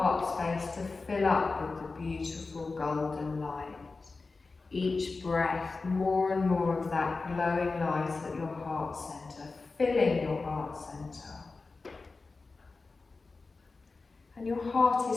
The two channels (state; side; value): quieter; right; 3.9 dB